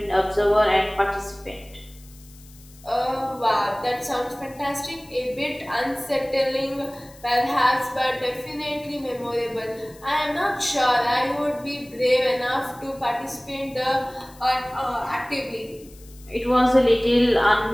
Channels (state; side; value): noise; left; hiss, 24 dB below the sound